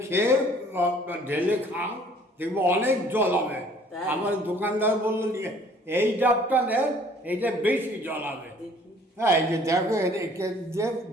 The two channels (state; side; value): normal; both; correlation 0.56